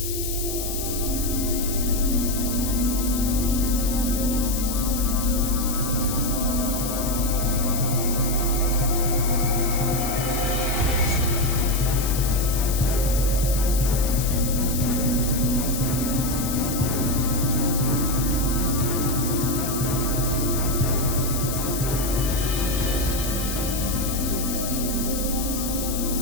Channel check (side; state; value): left; noise; hiss, 5 dB below the sound